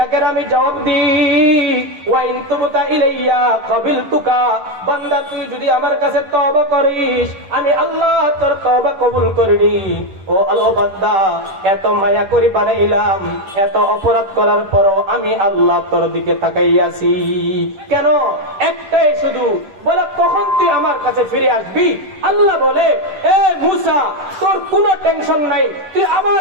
আমি জবাব দিই। ওয়া ইন তুবতা ইলাইয়া ক্বাবিলতুকা, বান্দা তুই যদি আমার কাছে তওবা করিস আমি আল্লাহ তোর তওবা কবুল করিনি। ও আল্লাহ বান্দা, এত মায়া করি বানাইলাম, এত অপরাধ করার পরও আমি আল্লাহ তোর দিকে তাকাইয়াছি কেন? একটাই শুধু, বলে কখন তুই আমার কাছে ফিরে আসবি? আল্লাহ বলে, এ মুসা তোর কোনো টেনশন নাই, তুই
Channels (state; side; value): late; left; 11 ms